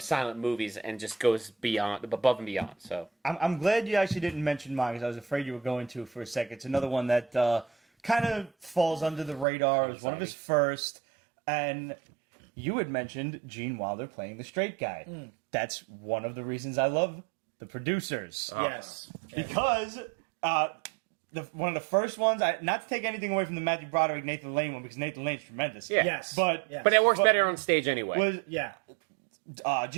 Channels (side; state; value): left; drops out; at 9.5 s